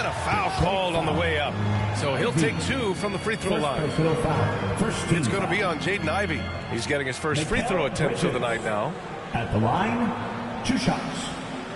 a foul called on the way up. So he'll take 2 from the free throw line. It's going to be on Jaden Ivey. He's getting his first free throw attempt of the night now. At the line, 2 shots.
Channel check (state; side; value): identical; both; correlation 1.00